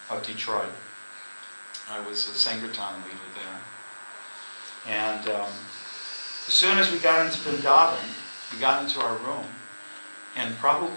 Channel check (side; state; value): both; inverted; correlation -1.00